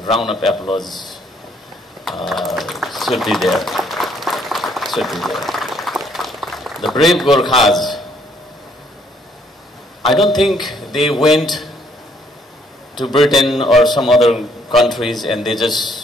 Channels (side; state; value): both; normal; correlation 0.67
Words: round of applause should be there. Should be there. The brave Gurkhas, I don't think they went to Britain or some other countries and they